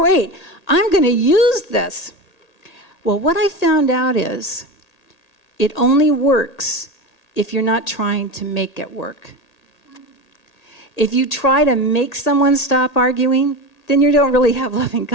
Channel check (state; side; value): late; right; 1.8 ms